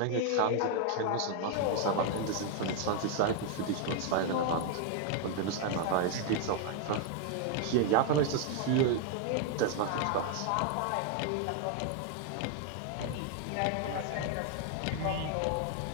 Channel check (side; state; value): both; different; correlation 0.00